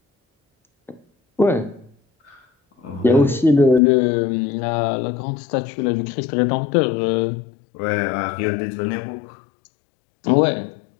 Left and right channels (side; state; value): right; drops out; at 3.8 s